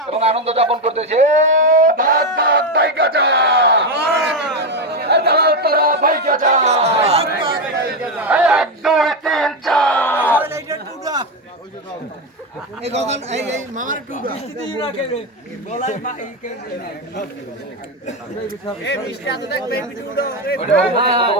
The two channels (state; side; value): normal; both; correlation 0.09